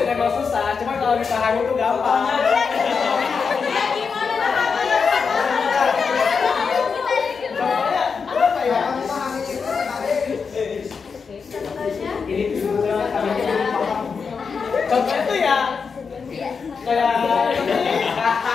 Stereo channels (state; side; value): quieter; right; 5.5 dB